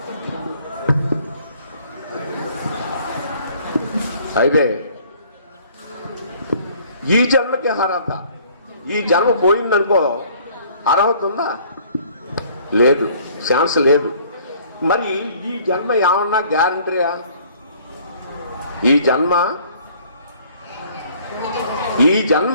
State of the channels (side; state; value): both; inverted; correlation -0.57